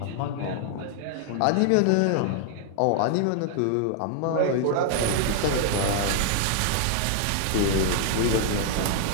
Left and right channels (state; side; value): different; both; correlation 0.00